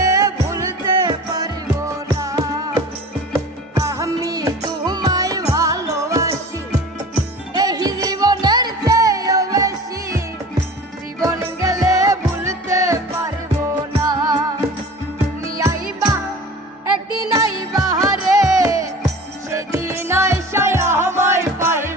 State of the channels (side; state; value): both; normal; correlation 0.40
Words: ভুলতে পারবো না আমি তোমায় ভালোবাসি এই জীবনের চেয়েও বেশি জীবন গেলে ভুলতে পারবো না তুমি আইবা একদিন আইবা রে সেদিন আইসায় আমায়